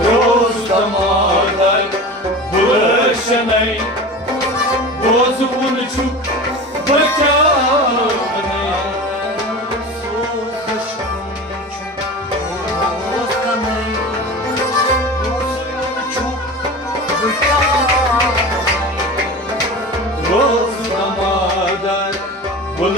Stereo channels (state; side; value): normal; both; correlation 0.33